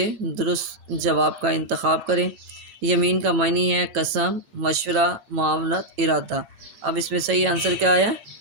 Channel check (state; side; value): late; left; 9.1 ms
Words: दुरुस्त जवाब का इंतखाब करें। यमीन का मानी है कसम, मशवरा, मामलत, इरादा। अब इसमें सही आंसर क्या आया?